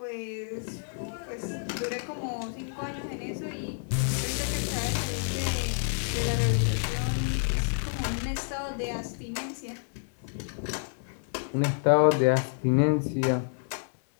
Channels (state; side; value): silent; right; digital silence